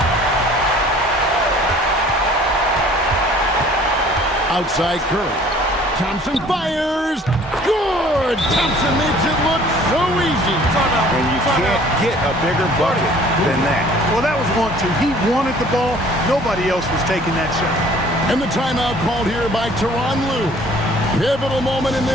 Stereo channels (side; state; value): both; normal; correlation 0.53